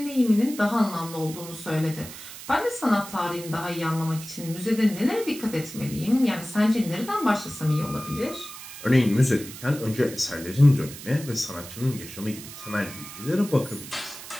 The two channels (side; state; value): right; noise; hiss, 13 dB below the sound